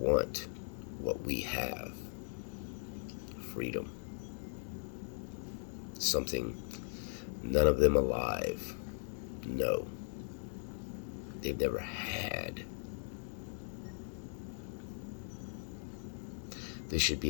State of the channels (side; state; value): right; silent; digital silence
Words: what we have, freedom. Something none of them alive know. They've never had. This should